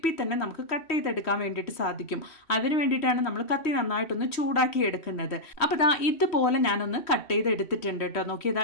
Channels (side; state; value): right; late; 3.1 ms